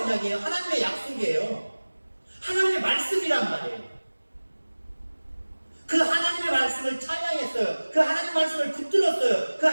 하나님의 약속이에요. 하나님의 말씀이란 말이에요. 그 하나님의 말씀을 찬양했어요. 그 하나님의 말씀을 붙들었어요. 그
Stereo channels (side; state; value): both; inverted; correlation -1.00